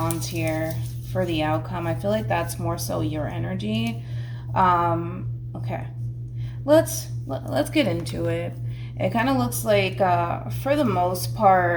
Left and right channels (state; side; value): identical; both; correlation 1.00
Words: here for the outcome. I feel like that's more so your energy. Okay, let's get into it. It kind of looks like, for the most